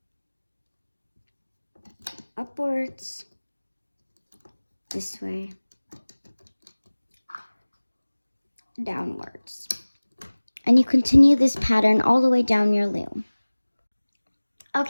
Upwards. This way. Downwards. And you continue this pattern all the way down your loom.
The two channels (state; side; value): inverted; both; correlation -1.00